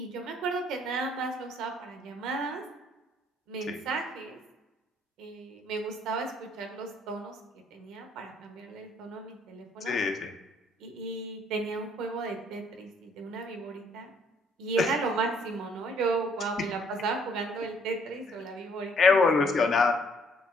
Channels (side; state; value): both; normal; correlation 0.64